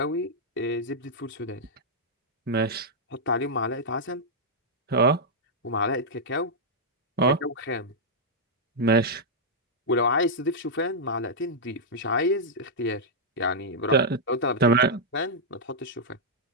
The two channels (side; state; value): both; normal; correlation -0.07